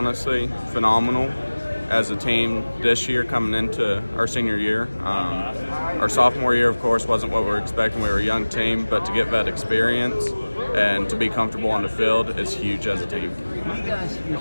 phenomenal as a team this year coming into our senior year. Our sophomore year, of course, wasn't what we were expecting. We were a young team, but to get that experience and to be comfortable on the field is huge as a team. You guys, your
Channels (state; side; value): inverted; both; correlation -1.00